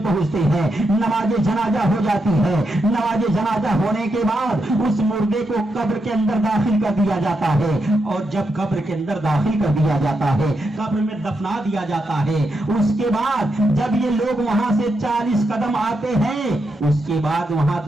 پہنچتے ہیں، نماز جنازہ ہو جاتی ہے، نماز جنازہ ہونے کے بعد اس مردے کو قبر کے اندر داخل کر دیا جاتا ہے، اور جب قبر کے اندر داخل کر دیا جاتا ہے، قبر میں دفنا دیا جاتا ہے، اس کے بعد جب یہ لوگ وہاں سے 40 قدم آتے ہیں، اس کے بعد وہاں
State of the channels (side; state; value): both; normal; correlation 0.84